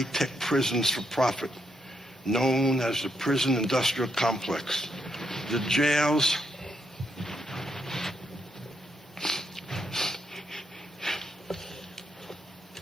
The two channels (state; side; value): normal; both; correlation 0.78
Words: prisons for profit, known as the prison industrial complex. The jails